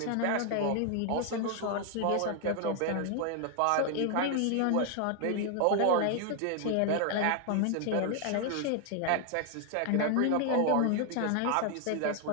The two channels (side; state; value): both; different; correlation 0.00